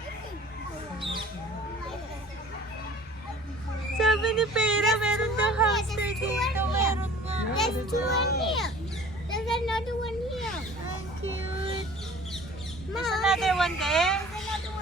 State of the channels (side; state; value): both; normal; correlation 0.47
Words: Sabi ni Pera, meron daw hamster dito. Meron nga. There's two in here. There's another one here. Ang cute. Mom, There's another one there. there's another